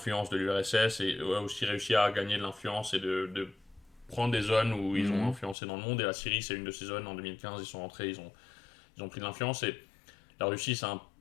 de l'URSS et a aussi réussi à gagner de l'influence et de prendre des zones où ils ont influencé dans le monde. Et la Syrie, c'est une de ces zones. En 2015, ils sont rentrés, ils ont pris de l'influence. Et la Russie, c'est un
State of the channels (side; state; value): right; drops out; at 5.6 s